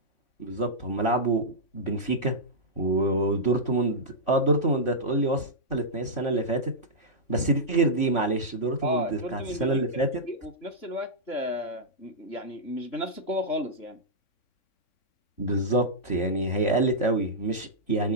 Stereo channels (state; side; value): late; right; 3.6 ms